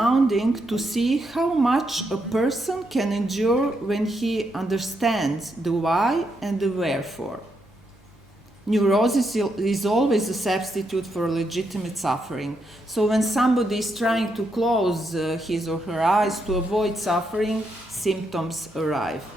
to see how much a person can endure when he understands the why and the wherefore. Neurosis is always a substitute for legitimate suffering. So when somebody is trying to close his or her eyes to avoid suffering, symptoms arrive.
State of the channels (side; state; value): both; normal; correlation 0.80